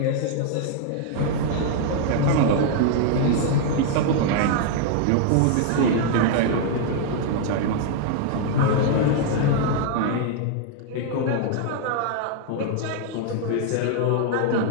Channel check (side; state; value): both; different; correlation 0.00